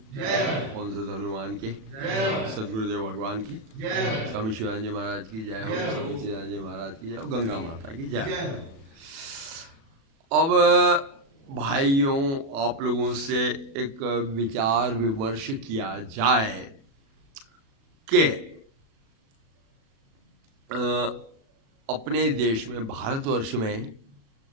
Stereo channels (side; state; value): left; late; 36 ms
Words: पवन सुत हनुमान की, सदगुरुदेव भगवान की, स्वामी शिवानंद जी महाराज की जय हो, स्वामी चिदानंद जी महाराज की जय हो, गंगा माता की जय हो। अब भाइयों, आप लोगों से एक विचार विमर्श किया जाए कि अपने देश में, भारतवर्ष में